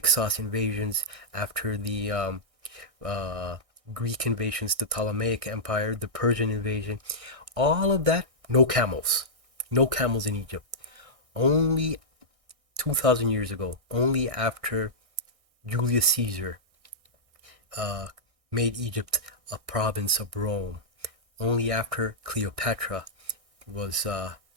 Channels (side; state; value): left; late; 1.6 ms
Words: invasions, after the uh, Greek invasions, the Ptolemaic Empire, the Persian invasion, all of that, no camels. No camels in Egypt. Only 2,000 years ago, only after Julius Caesar uh, made Egypt a province of Rome, only after Cleopatra was